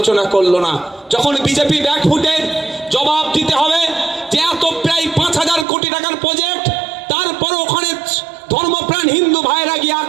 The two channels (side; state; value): left; drops out; at 5.7 s